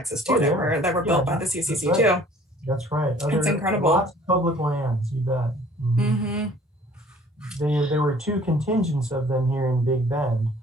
Oh too that yeah, were yeah, built by the that's CCC right. too. That's right. It's Other incredible. lots of public lands, you bet. Hmm. There were two contingents of them here in Big Bend.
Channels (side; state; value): both; normal; correlation 0.53